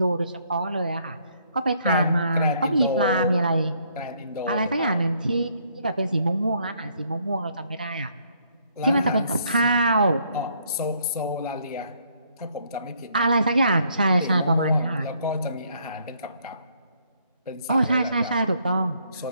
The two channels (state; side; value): inverted; both; correlation -0.68